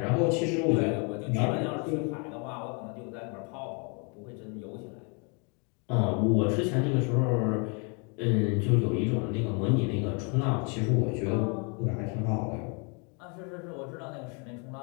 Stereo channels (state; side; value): quieter; right; 35.4 dB